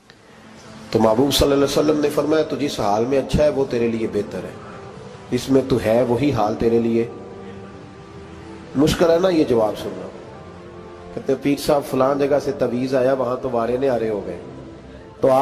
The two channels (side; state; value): both; identical; correlation 1.00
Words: تو محبوب صلی اللہ علیہ وسلم نے فرمایا تو جس حال میں اچھا ہے وہ تیرے لیے بہتر ہے، اس میں تو ہے وہی حال تیرے لیے۔ مشکل ہے نا یہ جواب سننا۔ کہتے پیر صاحب فلان جگہ سے تویز آیا، وہاں تو وارے نے آرے ہو گئے، تو